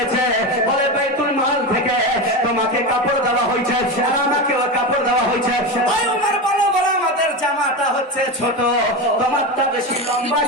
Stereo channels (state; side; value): normal; both; correlation 0.19